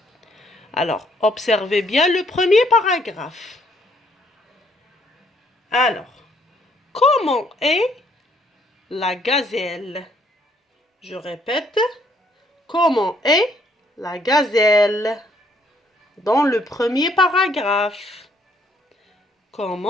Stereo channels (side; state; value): both; normal; correlation 0.67